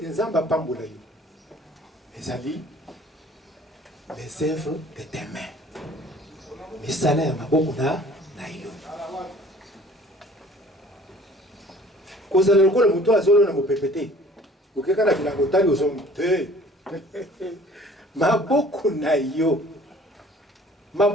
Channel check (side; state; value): both; normal; correlation 0.52